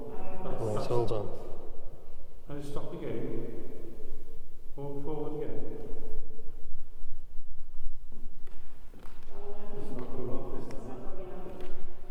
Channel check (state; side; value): identical; both; correlation 1.00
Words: Hold on. And stop again. Walk forward again. It's not going off this time.